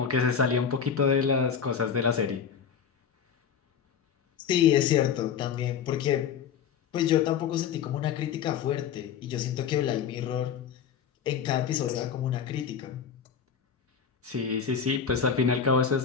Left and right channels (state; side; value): quieter; right; 7.3 dB